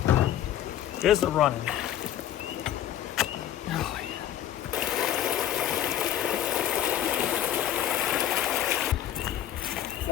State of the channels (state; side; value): quieter; right; 11.4 dB